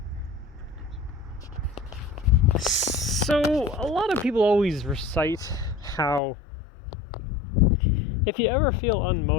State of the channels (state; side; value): drops out; right; at 6.2 s